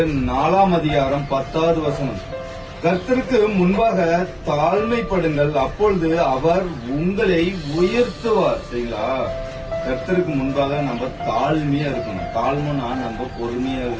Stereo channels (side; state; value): both; identical; correlation 1.00